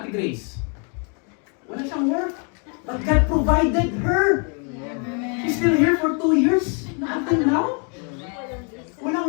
Grace. Wala siyang work. But God provided her. She's still here for 2 years. Until now.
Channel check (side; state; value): right; quieter; 38.4 dB